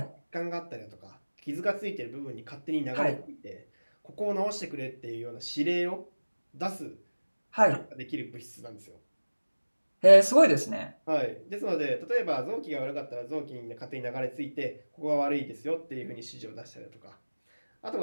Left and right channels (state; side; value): inverted; both; correlation -1.00